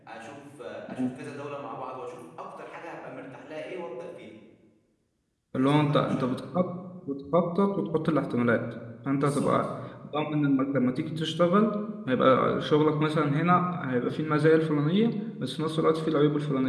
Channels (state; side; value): identical; both; correlation 1.00